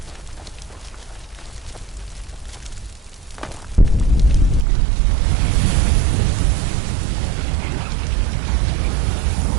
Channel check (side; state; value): left; drops out; at 4.7 s